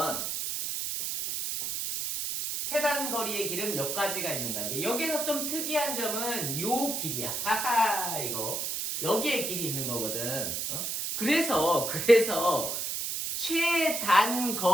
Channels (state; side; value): noise; right; hiss, 2 dB below the sound